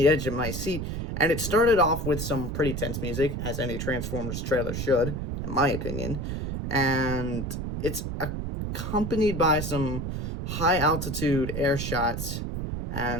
edge of my seat. And it started off with some pretty tense music, as any Transformers trailer should, in my opinion. And it's accompanied by some high altitude air shots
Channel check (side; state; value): right; noise; rumble, 4 dB below the sound